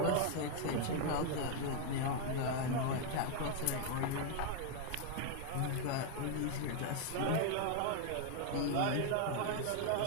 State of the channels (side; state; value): both; different; correlation 0.00